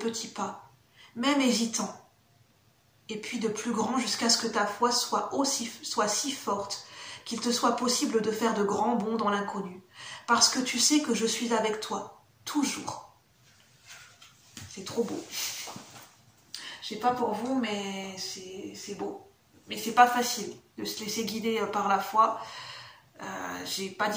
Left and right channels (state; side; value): identical; both; correlation 1.00